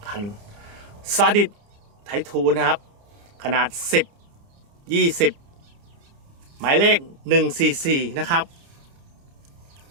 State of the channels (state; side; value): late; left; 29 ms